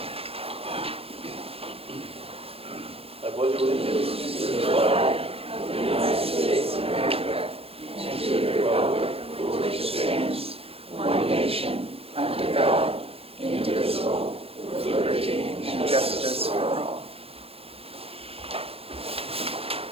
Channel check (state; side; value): late; left; 0.28 ms